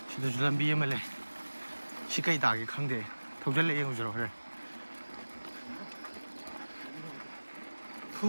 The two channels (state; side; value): inverted; both; correlation -1.00